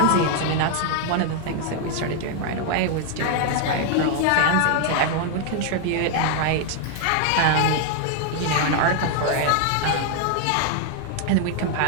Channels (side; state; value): both; different; correlation 0.00